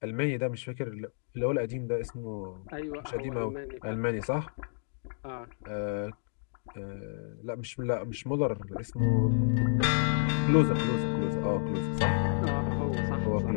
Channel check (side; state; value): right; silent; digital silence